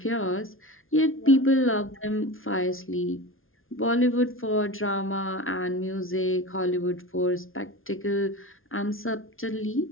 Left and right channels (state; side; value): late; right; 0.60 ms